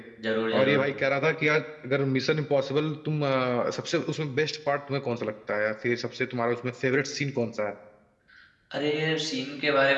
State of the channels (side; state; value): both; identical; correlation 1.00